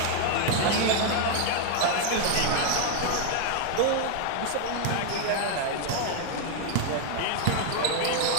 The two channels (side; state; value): both; different; correlation 0.00